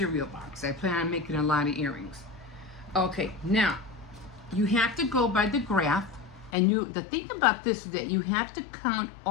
box. I plan on making a lot of earrings. Okay, now, you have to go by the graph, and the thing about this is that you have to count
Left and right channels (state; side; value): drops out; right; at 6.5 s